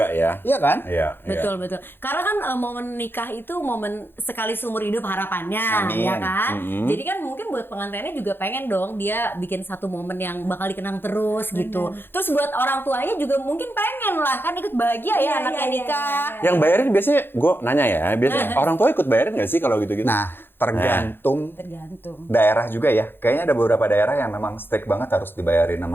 ya. Iya kan? Iya. betul. Karena kan momen nikah itu momen sekali seumur hidup harapannya, Amin. ya kan? Jadi kan mungkin buat pengantinnya juga pengen dong dia bikin satu momen yang bakal dikenang terus gitu. Terus buat orang tuanya juga mungkin pengen lah kan ikut bahagia ya Iya, anaknya iya, nikah. Yang bayarin biasanya, gue nanya ya, biasanya orang tua ikut bayarin nggak sih kalau gitu-gitu? Nah, tergantung Tergantung. daerah juga ya. Kayaknya ada beberapa daerah yang memang strict banget harus dibayarin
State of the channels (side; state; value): right; late; 0.10 ms